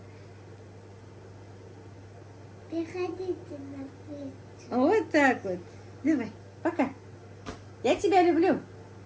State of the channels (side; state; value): both; identical; correlation 1.00